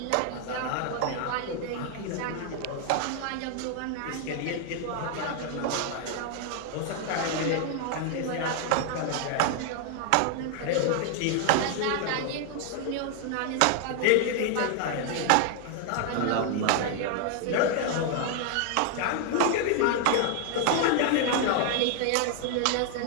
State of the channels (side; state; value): both; different; correlation 0.00